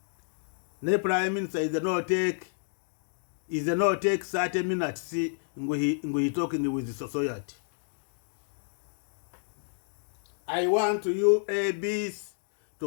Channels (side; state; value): right; silent; digital silence